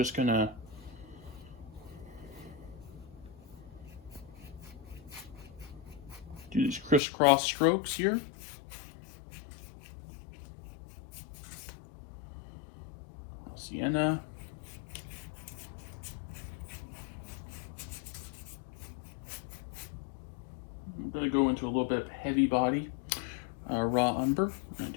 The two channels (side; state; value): right; drops out; at 7.0 s